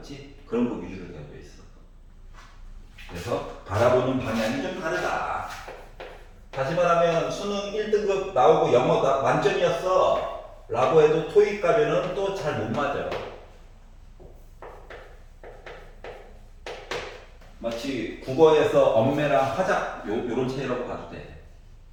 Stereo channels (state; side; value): identical; both; correlation 1.00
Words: 그런 거 위주로 되어 있어. 그래서 바라보는 방향이 좀 다르다. 다시 말하면 수능 1등급 나오고 영어 만점이었어 라고 해도 토익 가면은 또 잘 못 맞아. 마치 국어에서 엄매랑 화작 요런 차이라고 봐도 돼.